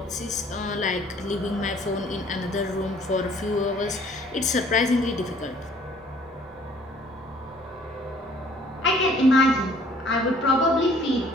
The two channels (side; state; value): both; normal; correlation 0.57